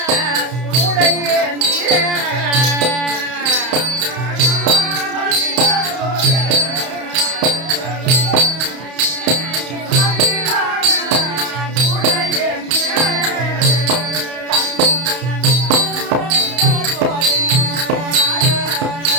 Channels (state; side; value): late; left; 31 ms